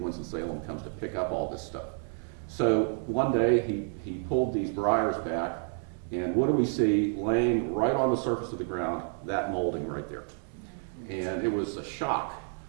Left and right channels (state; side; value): silent; left; 58 dB below the other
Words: comes to pick up all this stuff. So one day he pulled these briars back, and what do we see laying right on the surface of the ground? That molding right there. And it was a shock